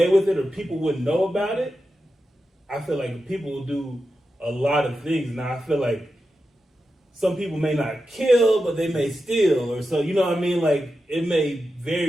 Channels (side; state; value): both; normal; correlation 0.90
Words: with it or people wouldn't know about it, I feel like people will do a lot of things. Now, I feel like some people may not kill, but they may steal. Or so, you know what I mean? Like, it may